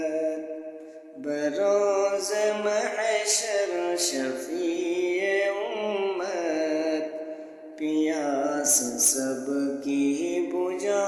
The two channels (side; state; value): both; identical; correlation 1.00